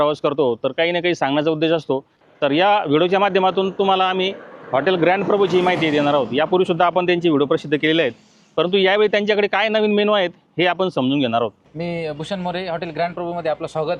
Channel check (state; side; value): identical; both; correlation 1.00